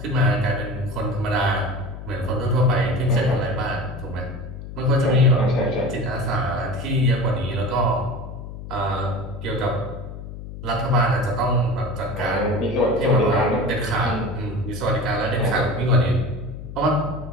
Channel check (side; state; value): left; noise; hum, 11 dB below the sound